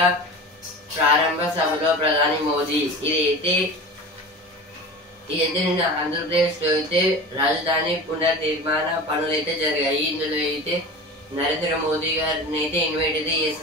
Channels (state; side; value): normal; both; correlation 0.34